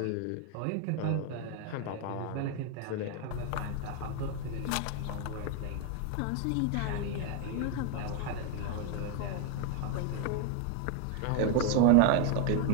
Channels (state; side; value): different; both; correlation 0.01